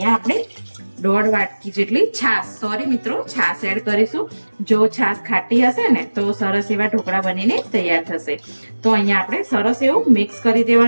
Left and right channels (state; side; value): inverted; both; correlation -1.00